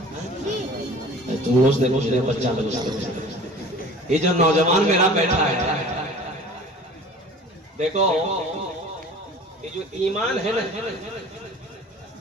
तुम रोज देखो बच्चा लोग। ये जो नौजवान मेरा बैठा है, देखो ये जो ईमान है ना,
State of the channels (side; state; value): both; normal; correlation 0.44